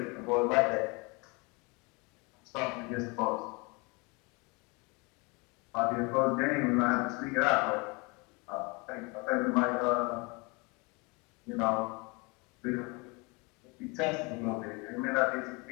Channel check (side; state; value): right; quieter; 28.5 dB